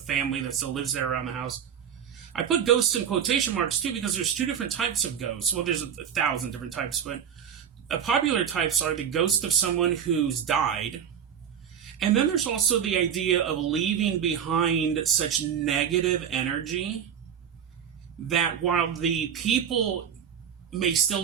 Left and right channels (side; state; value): left; quieter; 8.3 dB